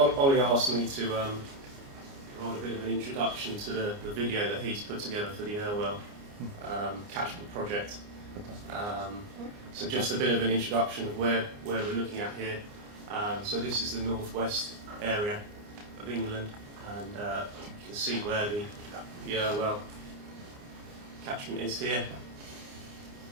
asked me to provide a bit of an introduction to the video that he's put together for the Irwell catchment project. So just a bit of an introduction of where we're looking at here. So this is the northwest area of England, and you can see where the Irwell catchment is here,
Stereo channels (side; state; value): left; late; 29 ms